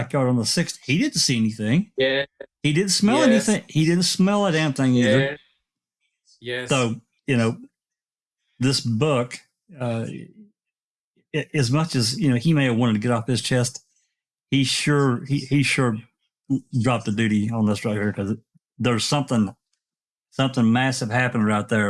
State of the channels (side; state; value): both; identical; correlation 1.00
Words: on the 6th. He didn't see anything. Yeah. He didn't smell anything. He didn't smell a damn thing either. Yes. So, this book, as much as, he may have wanted to get off his chest, he sure dropped the duty on this right here because there's something massive happening right